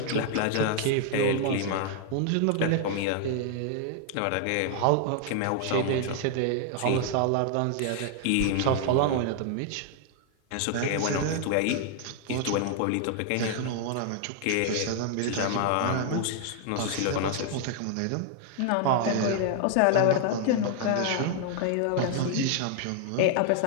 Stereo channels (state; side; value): different; both; correlation 0.00